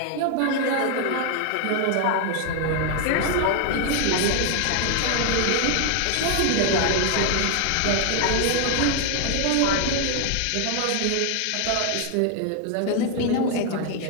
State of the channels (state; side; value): different; both; correlation 0.00